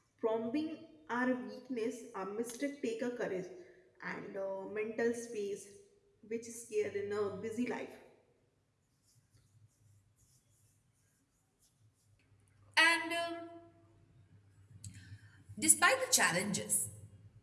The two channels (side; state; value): both; identical; correlation 1.00